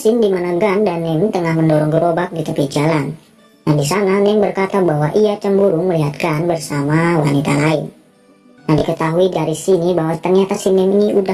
di mana Gun dan Nem tengah mendorong gerobak di tepi jalan. Nah, di sana Nem berkata bahwa ia cemburu melihat Gun bersama wanita lain. Nah, diketahui dari sini bahwa ternyata si Nem ini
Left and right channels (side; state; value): both; identical; correlation 1.00